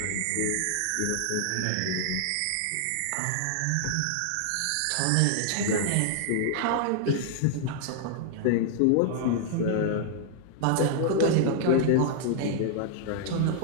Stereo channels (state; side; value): different; both; correlation -0.01